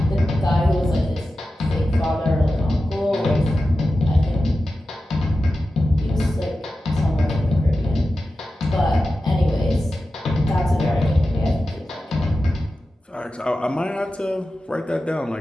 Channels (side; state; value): both; normal; correlation 0.93